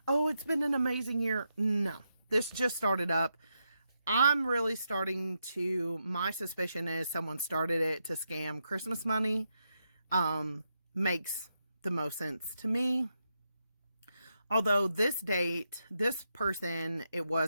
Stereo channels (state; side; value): inverted; both; correlation -0.84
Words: oh, it's been an amazing year. No, this just started up. I'm really starting to, my suspicion is someone started it to scam Christmas money. Makes the most sense to me. Although this date, this person, it